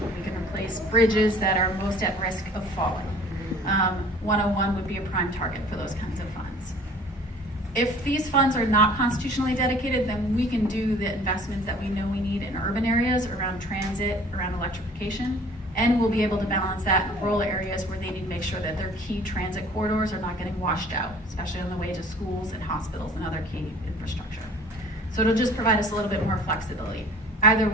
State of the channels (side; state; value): both; normal; correlation 0.50